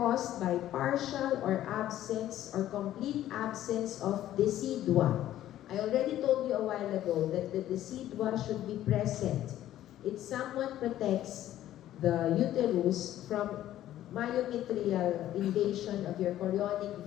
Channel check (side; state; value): right; quieter; 12.9 dB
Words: by partial or absence or complete absence of decidua. I already told you a while ago that the decidua should be present. It somewhat protects the uterus from myometrial invasion of your chorionic